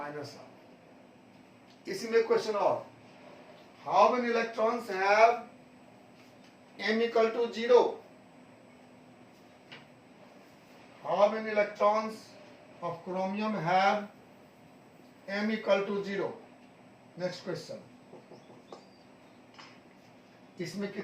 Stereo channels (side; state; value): both; identical; correlation 1.00